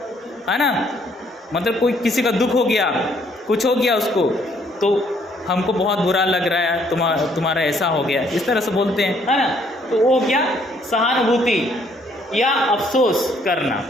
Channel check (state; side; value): normal; both; correlation 0.66